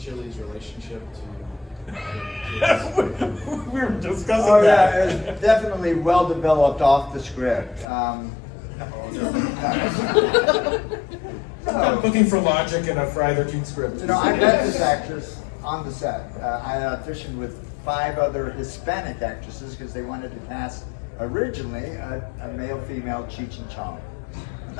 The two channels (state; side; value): drops out; right; at 7.9 s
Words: relationship to? We were discussing Oh that. yeah, it's definitely well developed off the script. I'm looking for logic in a Friday the 13th script. You know, I met this actress on the set. I auditioned with 5 other Hispanic actresses because they wanted to cast originally a male-female Cheech and Chong. And